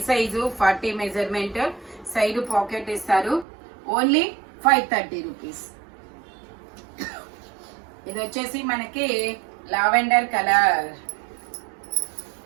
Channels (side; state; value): left; drops out; at 3.5 s